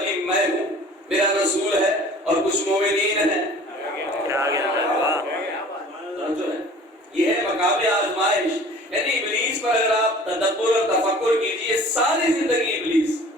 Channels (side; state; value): both; normal; correlation 0.47